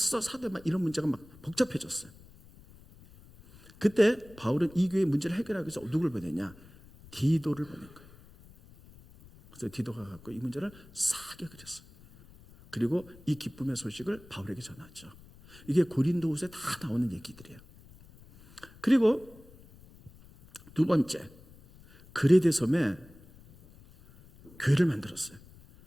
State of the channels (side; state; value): left; noise; rumble, 23 dB below the sound